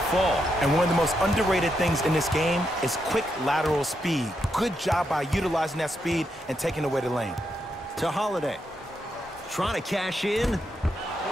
fall. And one of the most underrated things in this game is quick lateral speed. Good job by utilizing that speed and taking away the lane. To Holiday. Trying to cash in.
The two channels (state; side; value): normal; both; correlation 0.82